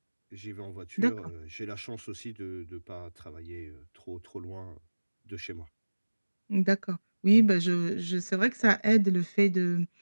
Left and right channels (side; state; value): both; inverted; correlation -1.00